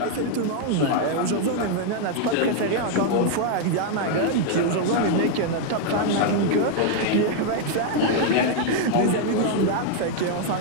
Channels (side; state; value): both; different; correlation 0.00